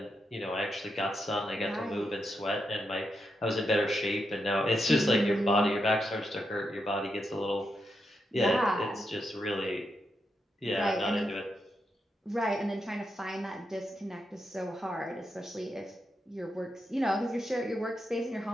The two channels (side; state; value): both; normal; correlation 0.84